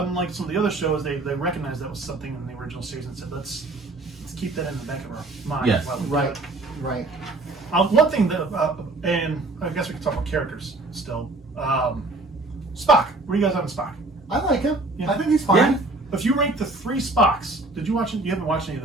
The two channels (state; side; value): quieter; left; 3.0 dB